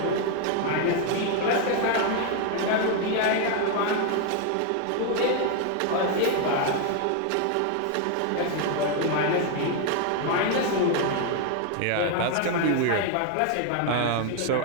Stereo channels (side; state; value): both; different; correlation 0.01